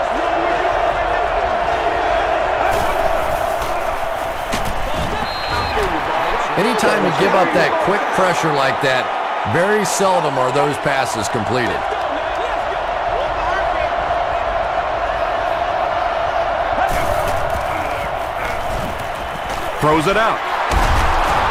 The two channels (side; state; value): both; identical; correlation 1.00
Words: Anytime you give up that quick pressure like that, very seldom are those passes completed. Throws it out.